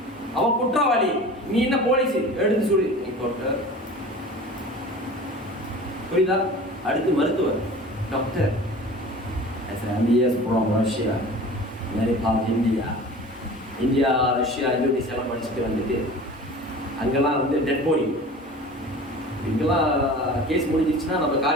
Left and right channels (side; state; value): both; normal; correlation 0.40